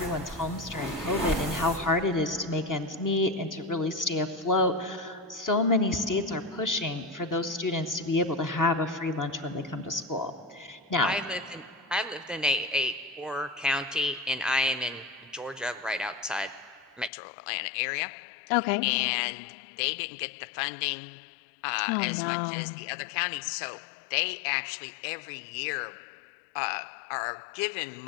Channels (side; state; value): right; drops out; at 17.1 s